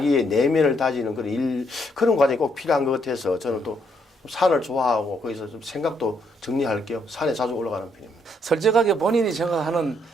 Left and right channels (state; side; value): normal; both; correlation 0.72